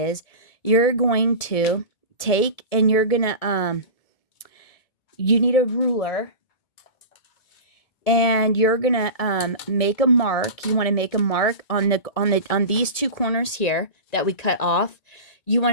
you're going to take and you're going to, you need a ruler and you're going to make a mark. You want to make a mark on these 2 corners here that we cut off. You want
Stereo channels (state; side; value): late; right; 1.7 ms